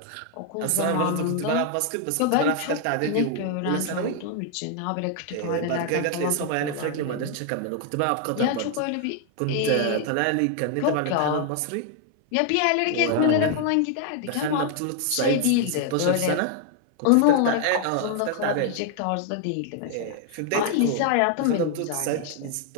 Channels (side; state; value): both; different; correlation 0.00